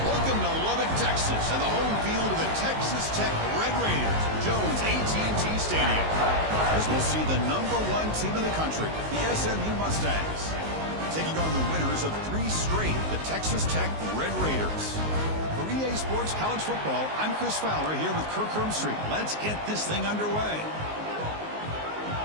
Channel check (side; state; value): left; late; 19 ms